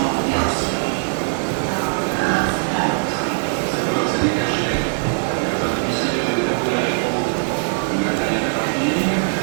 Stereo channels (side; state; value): left; silent; 56 dB below the other